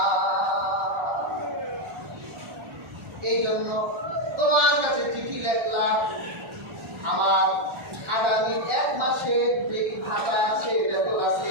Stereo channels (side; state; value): left; late; 1.4 ms